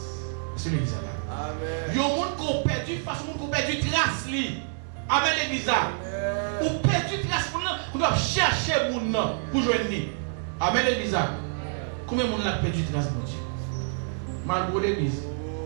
C'est l'église là. Amen. Il y a des gens qui ont perdu face, qui ont perdu trace. Amen l'église là. Ou perdu trace pour doivent chercher mon nom pour joindre. Amen l'église là. Combien de gens ont perdu trace mon Dieu? Malgré l'église.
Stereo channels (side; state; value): left; silent; digital silence